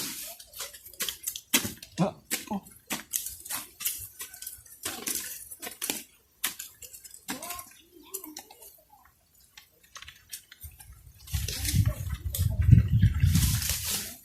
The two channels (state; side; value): identical; both; correlation 1.00